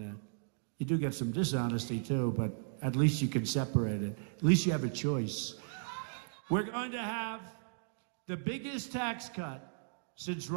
You do get some dishonesty too, but at least you can separate it. At least you have a choice. We're going to have the biggest tax cut since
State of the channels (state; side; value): silent; left; digital silence